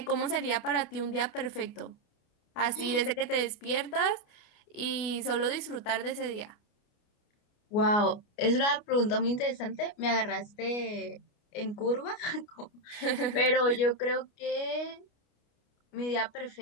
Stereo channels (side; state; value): right; late; 28 ms